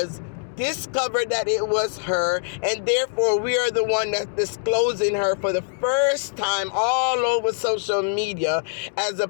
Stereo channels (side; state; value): right; silent; digital silence